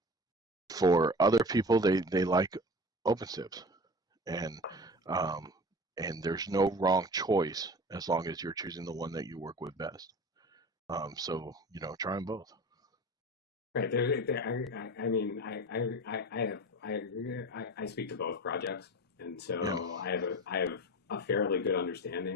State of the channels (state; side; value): normal; both; correlation 0.35